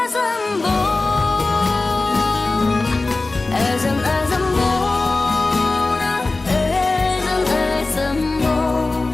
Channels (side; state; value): right; quieter; 3.4 dB